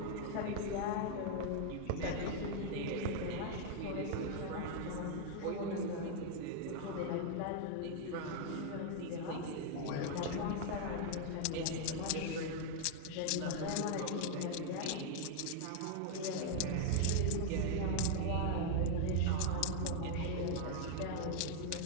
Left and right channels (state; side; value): different; both; correlation 0.00